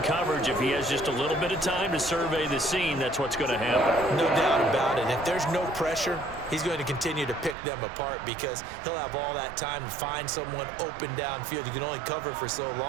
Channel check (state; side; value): drops out; left; at 7.6 s